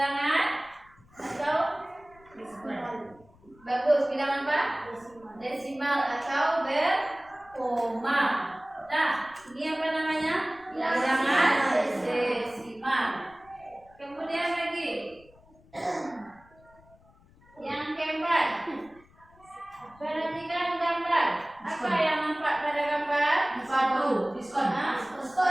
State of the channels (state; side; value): noise; left; rumble, 28 dB below the sound